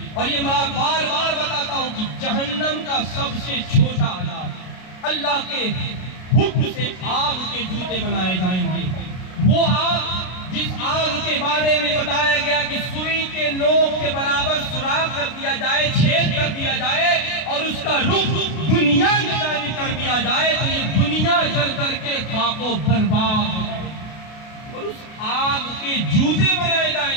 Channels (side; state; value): right; late; 33 ms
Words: اور یہ میں بار بار بتاتا ہوں کہ جہنم کا سب سے چھوٹا عذاب، اللہ کے حکم سے آگ کے جوتے بنائے جائیں گے۔ وہ آگ جس آگ کے بارے میں بتایا گیا کہ سوئی کے نوک کے برابر سوراخ کر دیا جائے، چھید کر دیا جائے اور اس کا رخ دنیا کی جانب کر دیا جائے تو یہ دنیا جل کر کے خاک و برباد ہو جائے، اور اس آگ کے جوتے بنائے